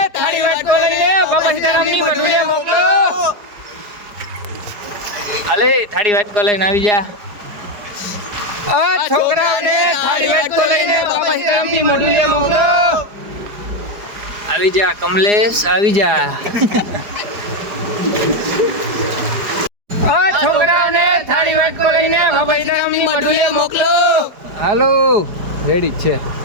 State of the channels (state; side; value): late; left; 4.9 ms